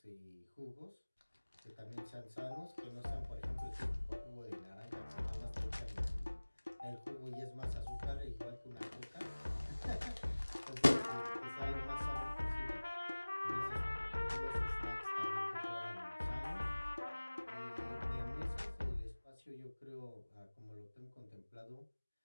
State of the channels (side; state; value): both; inverted; correlation -1.00